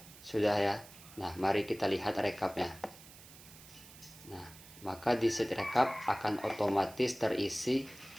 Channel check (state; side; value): noise; right; hiss, 19 dB below the sound